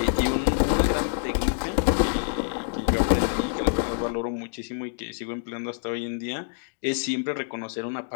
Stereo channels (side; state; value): right; silent; digital silence